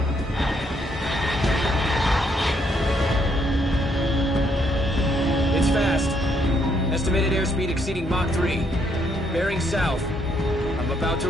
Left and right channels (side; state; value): both; normal; correlation 0.72